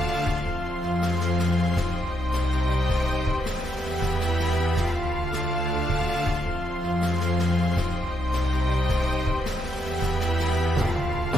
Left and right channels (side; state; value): both; normal; correlation 0.78